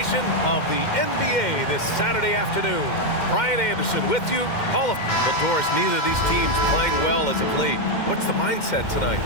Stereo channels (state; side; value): late; right; 2.1 ms